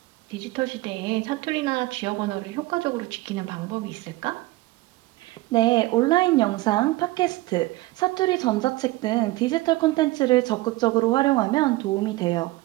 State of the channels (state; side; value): quieter; left; 19.3 dB